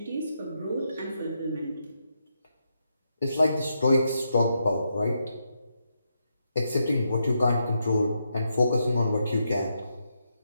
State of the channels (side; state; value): both; inverted; correlation -0.82